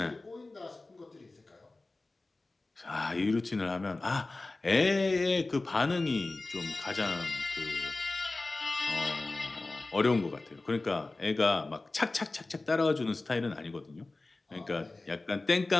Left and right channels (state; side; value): quieter; right; 3.2 dB